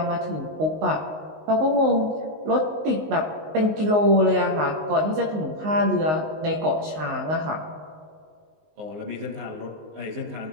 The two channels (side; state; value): left; late; 19 ms